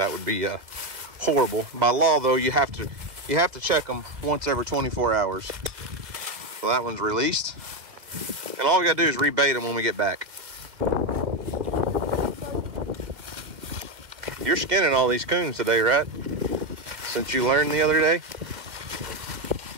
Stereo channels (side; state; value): left; late; 2.1 ms